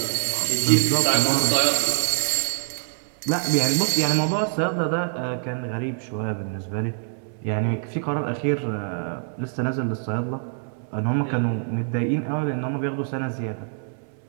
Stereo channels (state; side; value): silent; left; 62 dB below the other